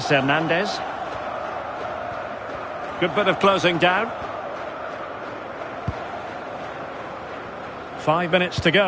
Hernandez. Good bit of closing down. 5 minutes to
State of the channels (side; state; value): both; identical; correlation 1.00